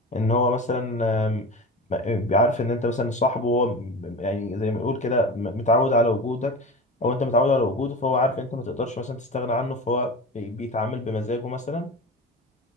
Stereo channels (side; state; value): both; normal; correlation 0.30